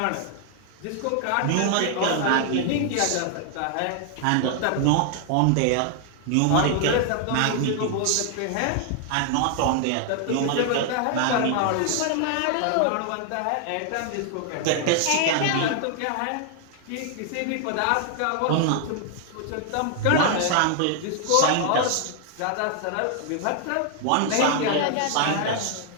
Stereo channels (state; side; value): different; both; correlation 0.00